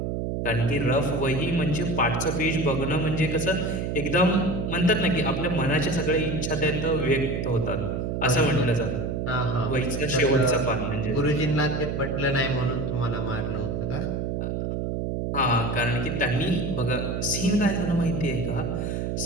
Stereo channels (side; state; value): right; noise; hum, 1 dB below the sound